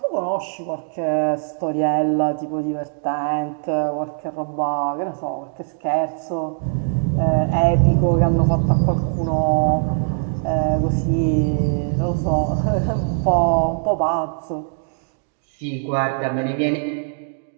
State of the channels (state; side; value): silent; left; digital silence